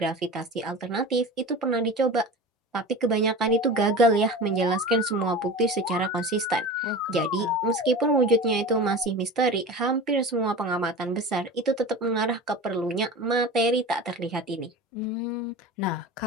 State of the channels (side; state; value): both; normal; correlation 0.33